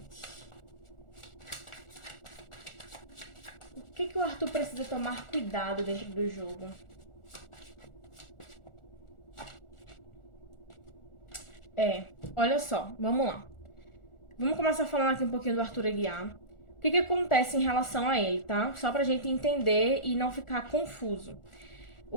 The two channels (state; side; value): late; right; 1.4 ms